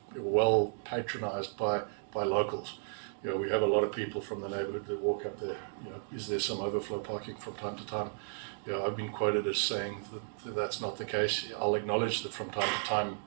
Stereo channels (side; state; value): left; silent; digital silence